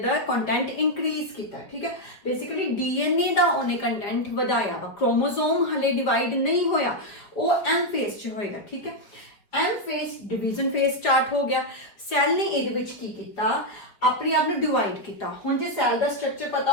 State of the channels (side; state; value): right; late; 5.2 ms